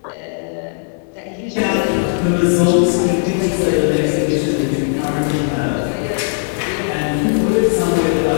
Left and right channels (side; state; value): right; silent; 60 dB below the other